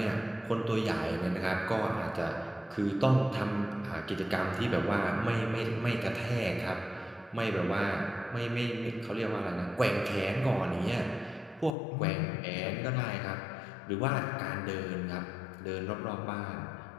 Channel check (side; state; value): right; drops out; at 11.8 s